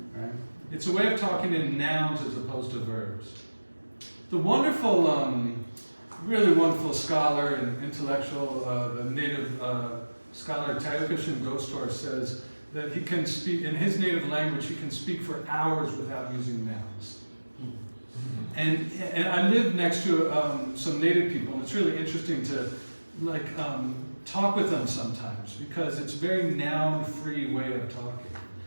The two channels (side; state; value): both; inverted; correlation -1.00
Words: It's a way of talking in nouns as opposed to verbs. The wonderful, really wonderful scholar and intellectual, the native scholar Tayukashin Gostor says that he can speak, in his native language, he can speak for hours without using nouns. And I live next to some native people, and it's really interesting to talk with them sometimes because it's a very noun-free way of talking.